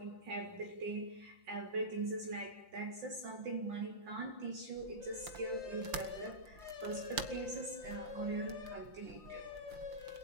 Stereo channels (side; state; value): left; late; 5.8 ms